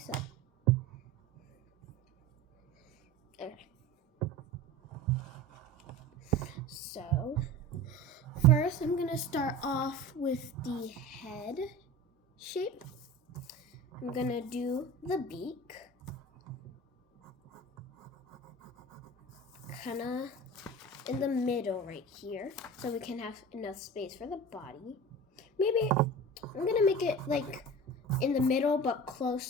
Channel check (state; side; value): normal; both; correlation 0.35